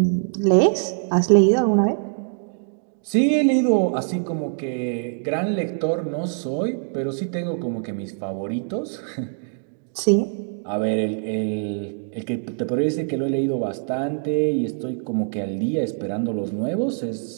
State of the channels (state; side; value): silent; left; digital silence